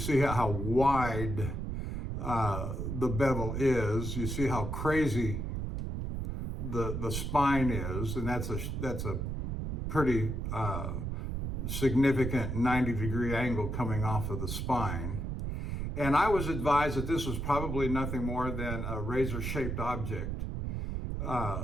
how wide the bevel is. You see how crazy the spine is, and that's a pretty significant 90-degree angle coming off of the spine. And I was advised that this was probably nothing more than a razor-shaped object.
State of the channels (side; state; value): right; noise; rumble, 3 dB below the sound